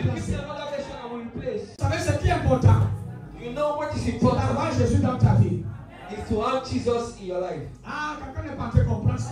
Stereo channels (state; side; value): identical; both; correlation 1.00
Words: give me remplacer. another version? I will replace. Vous savez ce qui est important? You know what is C'est important d'avoir Jésus dans ta vie. is to have Jesus in your life. Ah, quelqu'un n'est pas en train de comprendre ce